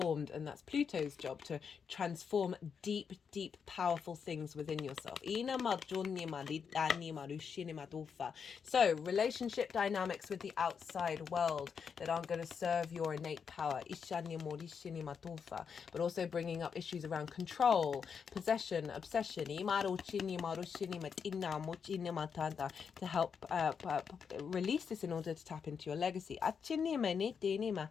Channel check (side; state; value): right; quieter; 6.5 dB